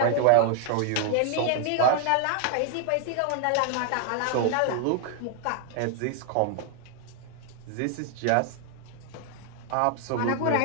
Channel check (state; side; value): different; both; correlation 0.00